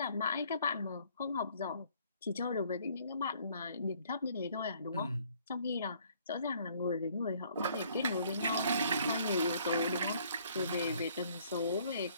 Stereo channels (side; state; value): both; inverted; correlation -0.61